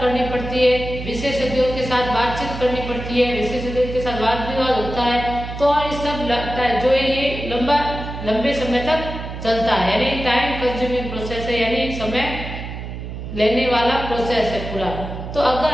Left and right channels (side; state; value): right; noise; hum, 8 dB below the sound